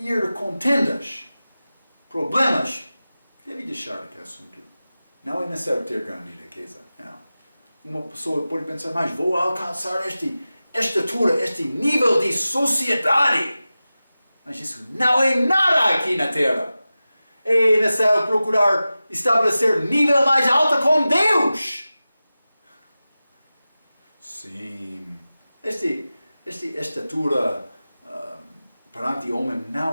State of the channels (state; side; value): inverted; both; correlation -0.95